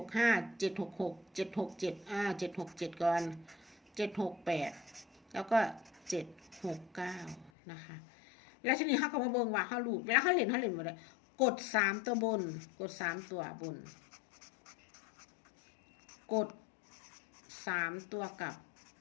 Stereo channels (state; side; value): drops out; right; at 7.5 s